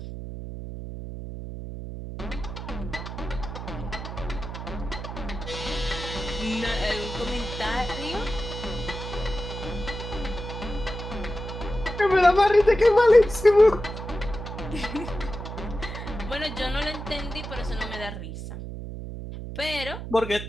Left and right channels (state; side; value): noise; right; hum, 8 dB below the sound